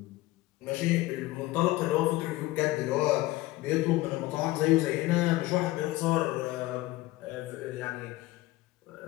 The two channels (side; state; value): right; quieter; 18.0 dB